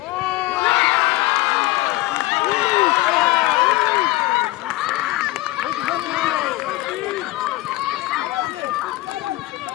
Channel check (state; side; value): quieter; right; 18.8 dB